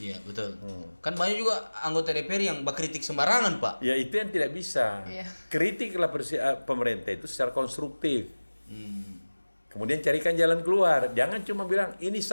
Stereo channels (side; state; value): both; inverted; correlation -1.00